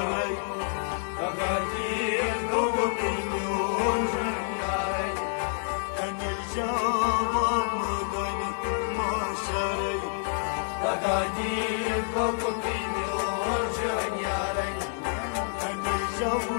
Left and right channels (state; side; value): silent; right; digital silence